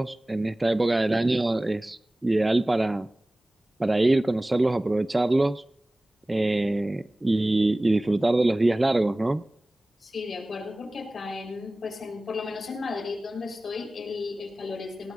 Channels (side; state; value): both; normal; correlation 0.98